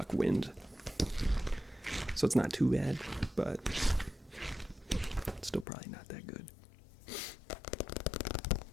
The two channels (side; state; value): right; drops out; at 5.7 s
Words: wind. So it's not too bad, but it's still probably not that good.